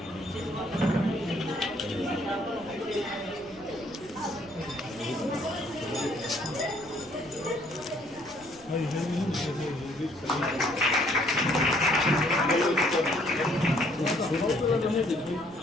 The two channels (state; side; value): noise; left; rumble, 25 dB below the sound